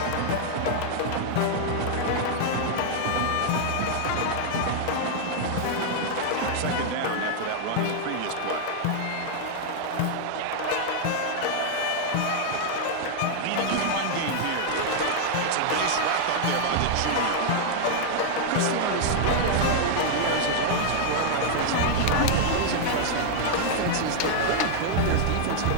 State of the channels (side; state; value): both; different; correlation 0.00